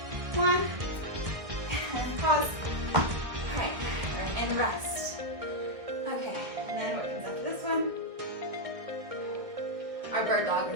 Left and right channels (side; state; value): left; late; 1.6 ms